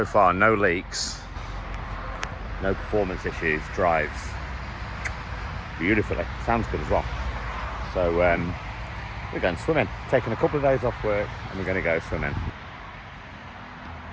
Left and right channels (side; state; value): both; identical; correlation 1.00